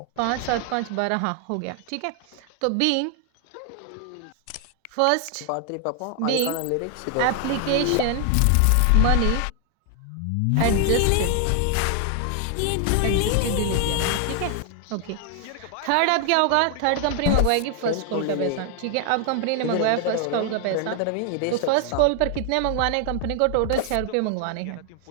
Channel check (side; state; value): both; different; correlation 0.00